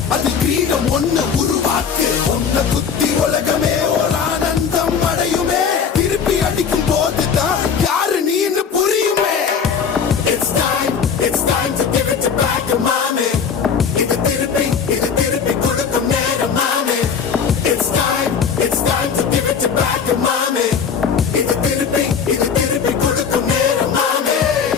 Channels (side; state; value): right; quieter; 6.6 dB